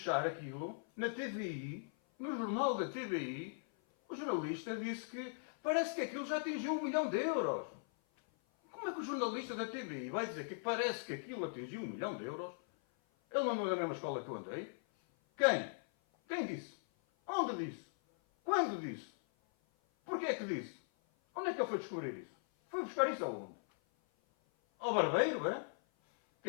aquilo, na TVI, no jornal da TVI, o jornalista disse que parece que aquilo já atingiu 1 milhão de euros. Como é que o jornalista da TVI vai dizer que parece que aquilo atingiu 1 milhão de euros? Ele não andou na mesma escola que eu andei? Quem? Quem disse? Onde disse? Quando disse? Porquê é que disse? Onde é que ele foi descobrir isso? Foi buscar isso aonde? Ao barbeiro, é?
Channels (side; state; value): right; silent; 52 dB below the other